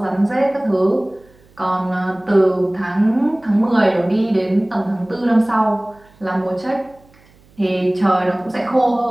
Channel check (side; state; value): right; noise; hum, 30 dB below the sound